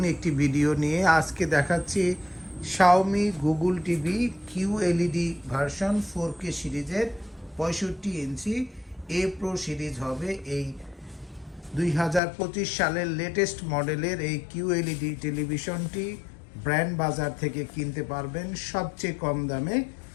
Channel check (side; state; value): right; drops out; at 12.2 s